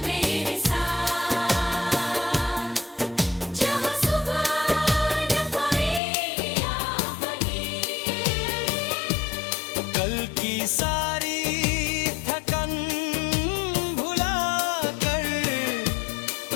मेरे साथ, जहाँ सुबह न पाए आफनी, कल की सारी थकन भुला कर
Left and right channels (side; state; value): right; drops out; at 6.0 s